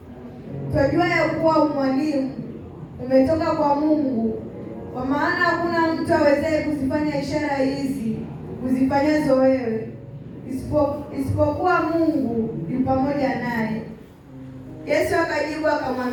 twajua ya kuwa mwalimu umetoka kwa Mungu, kwa maana hakuna mtu awezaye kuzifanya ishara hizi uzifanyazo wewe isipokuwa Mungu yu pamoja naye. Yesu akajibu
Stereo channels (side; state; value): both; identical; correlation 1.00